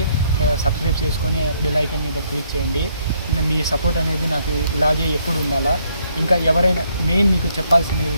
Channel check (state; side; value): inverted; both; correlation -0.71